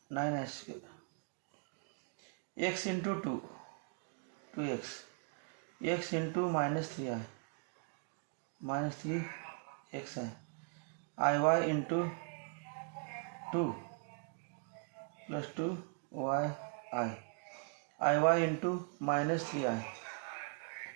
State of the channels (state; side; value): quieter; left; 39.6 dB